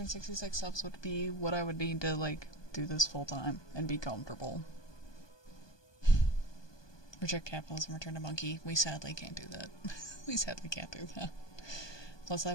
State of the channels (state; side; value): late; right; 1.2 ms